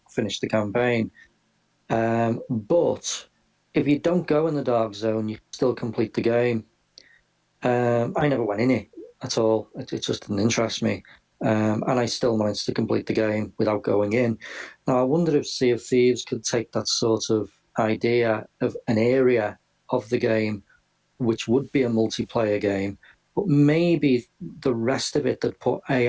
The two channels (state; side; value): identical; both; correlation 1.00